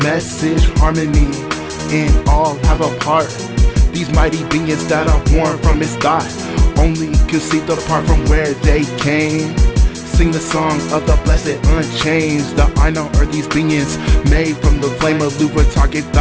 message. Harmony in all have a part. These mighty beings that are born from his thought only conceived apart from where they came. Sing the song of the blessed unchanged. The Ainur are these beings made from the flame of Luthien target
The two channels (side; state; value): both; identical; correlation 1.00